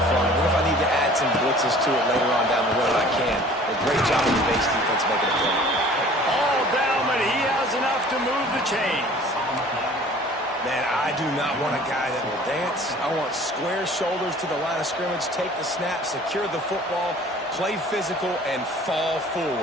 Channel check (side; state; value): both; normal; correlation 0.49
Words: front. What if I need to add some blitzes to it later on down the road? I can. A great job of the base defense making a play. All down, but he has enough to move the chains. Man, I do not want a guy that will dance. I want square shoulders to the line of scrimmage, take the snap, secure the football, play physical, and fall